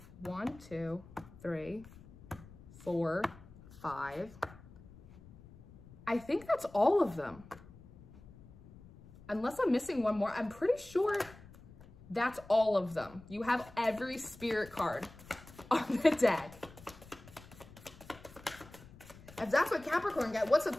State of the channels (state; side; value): noise; left; rumble, 20 dB below the sound